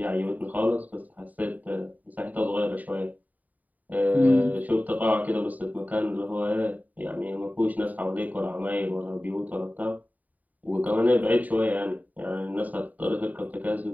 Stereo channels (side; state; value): left; late; 0.076 ms